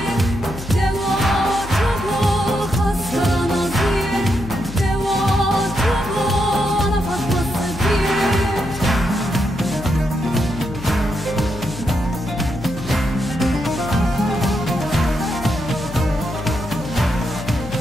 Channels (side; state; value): left; noise; hum, 12 dB below the sound